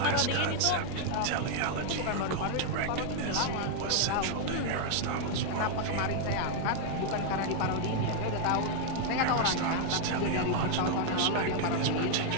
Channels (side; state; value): both; different; correlation 0.00